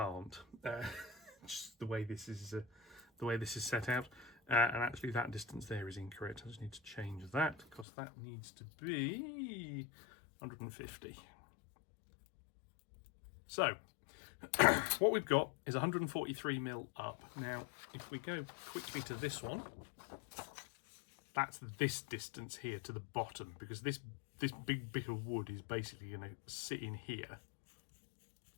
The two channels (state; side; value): drops out; right; at 7.9 s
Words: Just the way this is set out, and actually that distance there is incorrect. I just need to change that because that needs to be 150. So what we've got is 143mm up. Now if we go quickly to this one, that's this distance here to the bottom, because this big bit of wood is basically going to sit in here